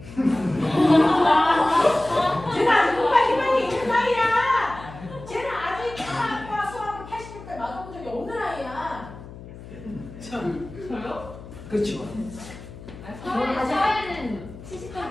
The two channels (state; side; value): noise; left; hum, 15 dB below the sound